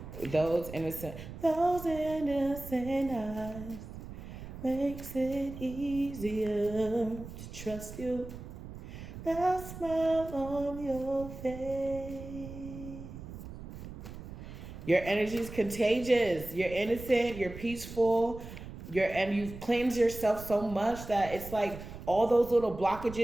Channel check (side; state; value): right; noise; rumble, 12 dB below the sound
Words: Those innocent eyes makes it easier to trust you. That smile on your face. Your energy is contagious. You're innocent. You're peaceful. and you've cleansed yourself so much that it's like all those little